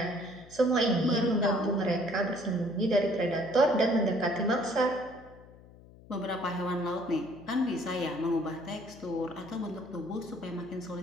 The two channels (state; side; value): noise; left; hum, 22 dB below the sound